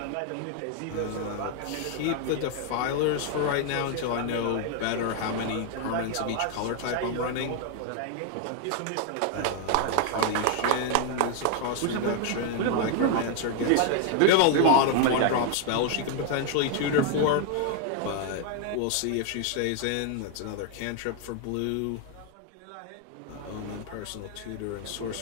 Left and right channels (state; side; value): different; both; correlation 0.00